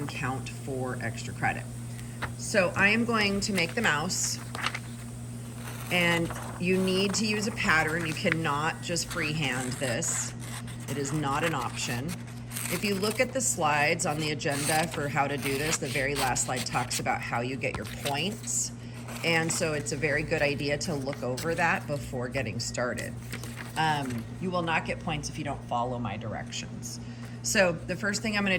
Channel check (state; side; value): identical; both; correlation 1.00